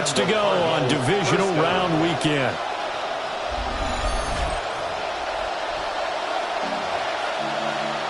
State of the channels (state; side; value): identical; both; correlation 1.00